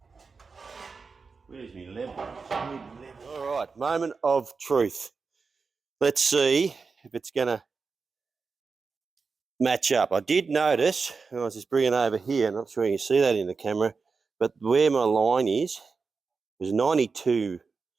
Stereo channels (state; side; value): quieter; left; 4.7 dB